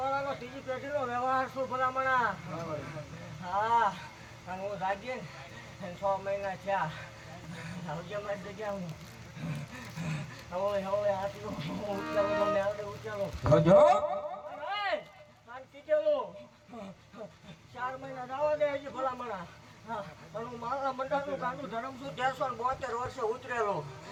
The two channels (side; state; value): both; identical; correlation 1.00